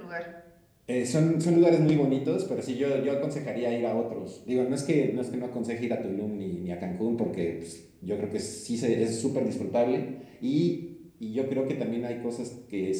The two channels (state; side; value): identical; both; correlation 1.00